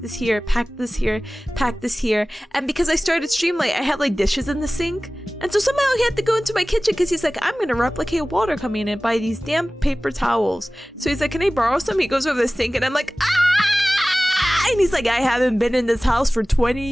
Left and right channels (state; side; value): normal; both; correlation 0.98